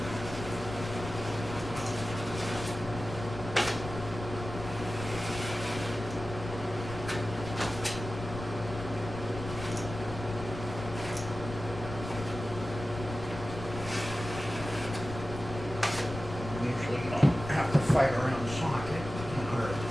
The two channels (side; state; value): left; noise; rumble, 9 dB below the sound